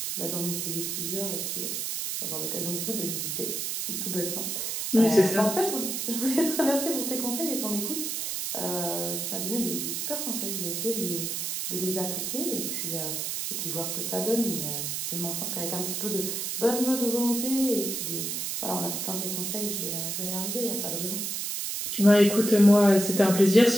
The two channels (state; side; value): noise; right; hiss, 2 dB below the sound